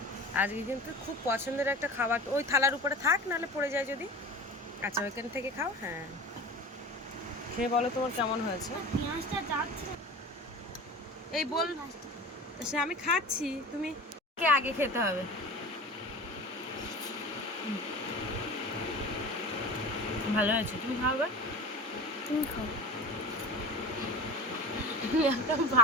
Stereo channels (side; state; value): both; normal; correlation 0.34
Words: আজকে কিন্তু খুব পছন্দের একটা খাবার, ওই থালার উপরে থাক, নাহলে পড়ে যায় যদি। আচ্ছা, ওইখান থেকে খাও। হ্যাঁ, খেয়ে বলো তোমার কেমন হয়েছে। পেঁয়াজটা যাচ্ছে। এই বল, সে আমি খাচ্ছি, তুমি কে আগে খেতে হবে। ভালো হয়েছে, তুমি খাবে। তুমি খাও। একটা